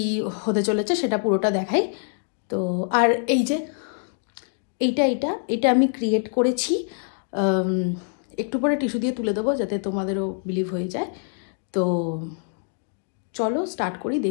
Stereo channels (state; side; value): silent; right; 57 dB below the other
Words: হতে চলেছে সেটা পুরোটা দেখাই। তো আর এই যে এইটা আমি ক্রিয়েট করেছি, একটু পরে টিস্যু দিয়ে তুলে দেবো যাতে তোমাদেরও বিলিভ হয়ে যায়। তো চলো স্টার্ট করি,